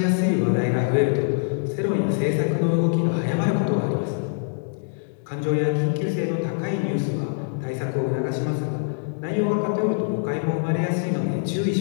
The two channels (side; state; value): right; silent; digital silence